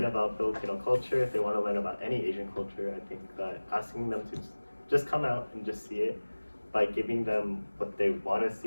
about Filipino culture, if they want to learn about any Asian culture, I think that asking them to just come out and just see it, by giving them what they want to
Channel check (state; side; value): inverted; both; correlation -1.00